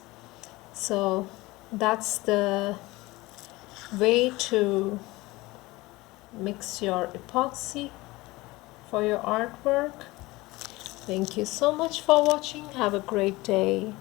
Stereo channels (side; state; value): right; quieter; 20.8 dB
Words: So that's the way to mix your epoxy for your artwork. Thank you so much for watching. Have a great day.